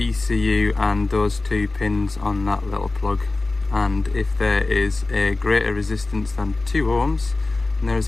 and those 2 pins on that little plug. And if there is a greater resistance than 2 ohms, then there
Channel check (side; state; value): right; quieter; 3.2 dB